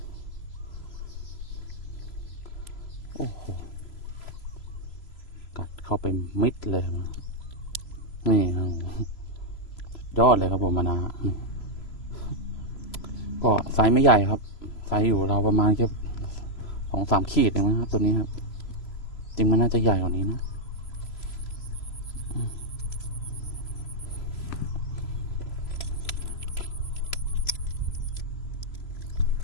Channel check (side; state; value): right; late; 3.0 ms